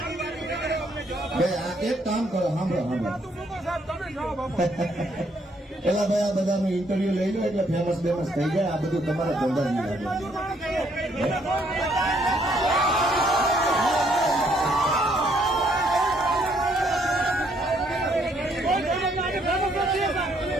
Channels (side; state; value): both; normal; correlation 0.69